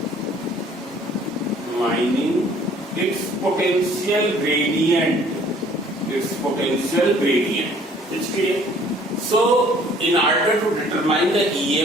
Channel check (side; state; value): both; normal; correlation 0.56